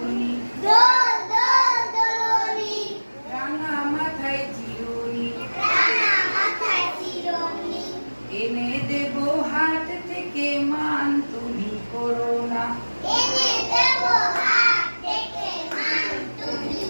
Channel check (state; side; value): inverted; both; correlation -1.00